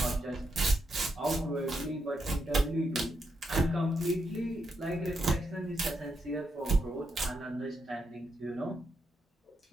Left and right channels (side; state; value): both; normal; correlation 0.82